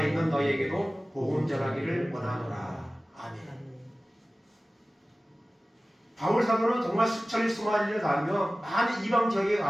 있는 너희에게도 복음 전하기를 원하노라. 아멘. 바울 사도는 정말 수천리 수만리를 다니며 많은 이방 지역에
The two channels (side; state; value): both; normal; correlation 0.97